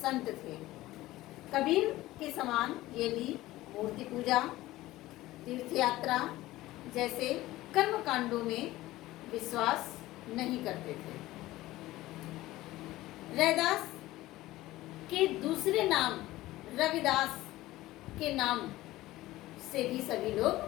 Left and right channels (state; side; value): quieter; right; 17.0 dB